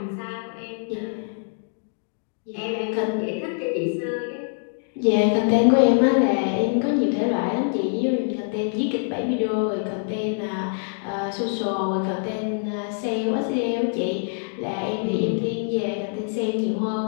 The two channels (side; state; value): right; silent; digital silence